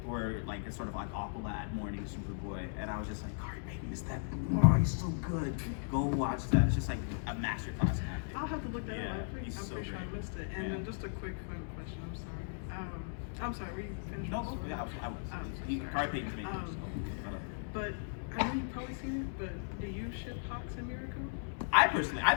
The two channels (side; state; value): right; silent; digital silence